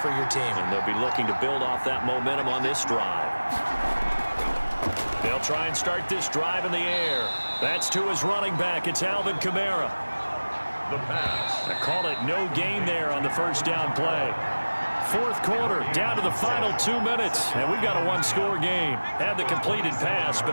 your team. And they'll be looking to build off that momentum on this drive. They'll try and start this drive in the air. That's to his running back. It's Alvin Kamara. The pass. I call it no gain there on the first down play. 4th quarter, down to the final 2 minutes, and we've got a 1-score game. Had the completed pass,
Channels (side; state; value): both; inverted; correlation -1.00